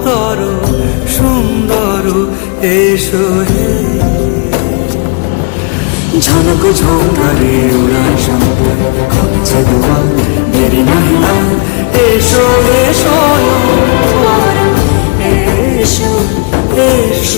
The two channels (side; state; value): right; quieter; 33.8 dB